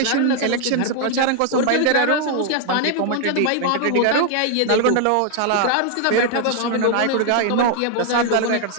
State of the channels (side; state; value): both; different; correlation 0.00